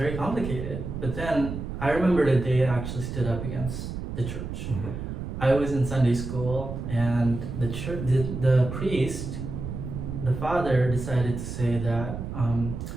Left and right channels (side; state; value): right; noise; rumble, 6 dB below the sound